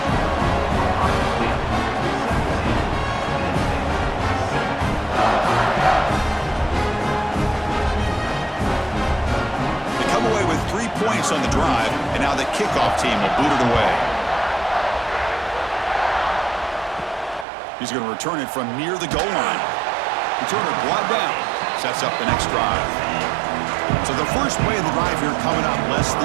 Away with 3 points on the drive, and now the kickoff team will boot it away. He's going to return it from near the goal line. Returner brought down. Sets up the next drive. So the first play of the drive here coming up. Less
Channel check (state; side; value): drops out; left; at 17.4 s